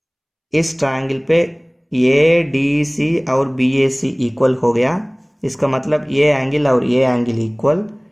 इस ट्रायंगल पे ए डी सी और बी ए सी इक्वल हो गया, इसका मतलब ये एंगल और ये एंगल इक्वल,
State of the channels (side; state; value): both; identical; correlation 1.00